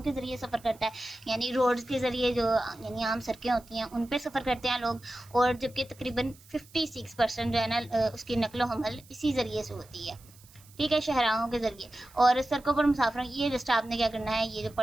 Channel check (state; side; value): noise; right; hiss, 25 dB below the sound